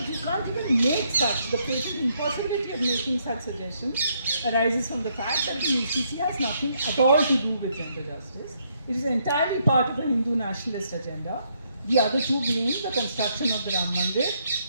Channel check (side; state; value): both; inverted; correlation -0.73